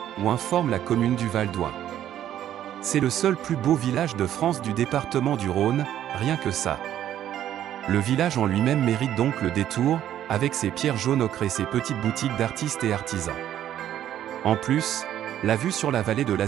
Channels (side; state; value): left; quieter; 11.4 dB